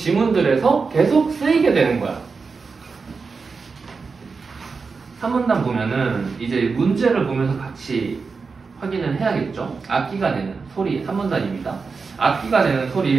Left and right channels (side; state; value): left; quieter; 4.8 dB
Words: 계속 쓰이게 되는 거야. 3문단 보면은 이제 문제를 보면서 같이 확인을 해야겠죠. 악기가 내는 소리 3문단입니다. 악기가 내는